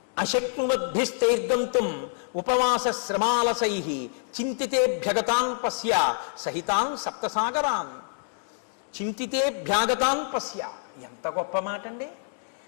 అశక్నువద్భిస్తైర్గంతుం ఉపవాస శ్రమాలసైః చింతితేభ్యగతాన్ పశ్య సహితాన్ సప్తసాగరాన్. చింతితేభ్యాగతాన్ పశ్య, ఎంత గొప్ప మాట అండి.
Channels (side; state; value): right; silent; digital silence